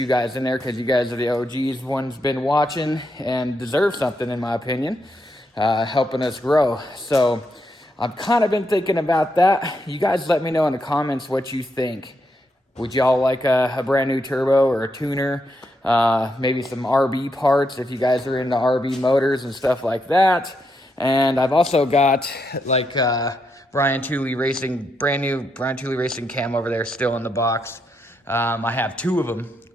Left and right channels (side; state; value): both; normal; correlation 0.81